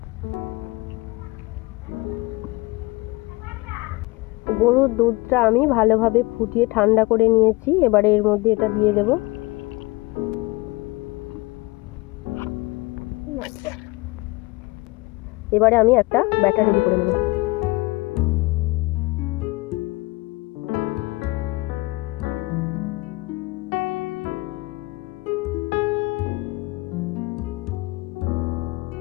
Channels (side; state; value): right; quieter; 22.9 dB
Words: গরুর দুধটা আমি ভালোভাবে ফুটিয়ে ঠান্ডা করে নিয়েছি। এবারে এর মধ্যে এটা দিয়ে দেব। এবারে আমি একটা ব্যাটার রেডি করে নেব।